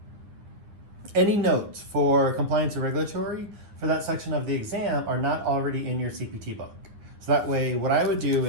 any notes for Compliance and Regulatory for that section of the exam are not already in your CPT book. So that way, what I would do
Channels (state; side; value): late; left; 9.8 ms